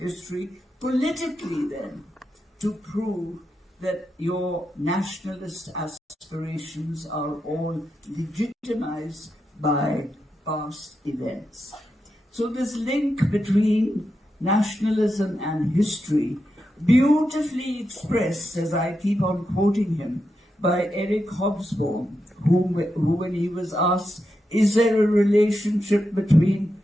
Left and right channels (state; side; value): normal; both; correlation 0.87